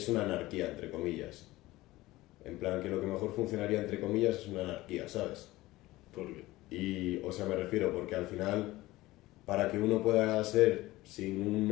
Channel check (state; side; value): quieter; right; 18.2 dB